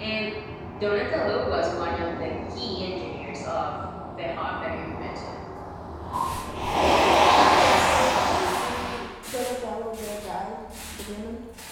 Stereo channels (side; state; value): both; identical; correlation 1.00